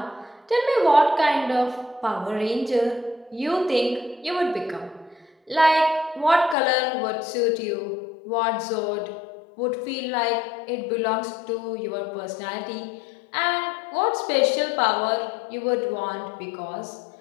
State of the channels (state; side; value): drops out; right; at 6.6 s